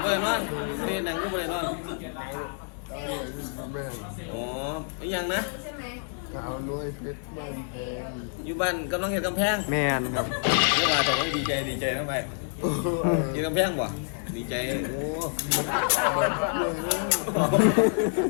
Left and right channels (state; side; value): silent; right; 60 dB below the other